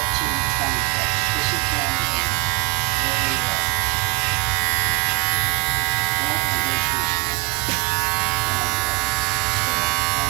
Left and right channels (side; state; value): left; quieter; 23.3 dB